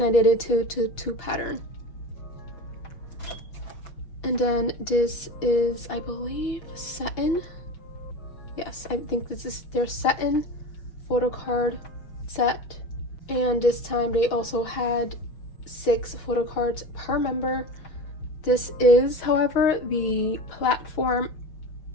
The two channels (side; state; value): right; late; 6.2 ms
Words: I did it to 2 pattern. And then this is, I believe, satin. Yes, I think this is their satin photo card set. And this time they also had 6 photo cards per member. This is, however, the platform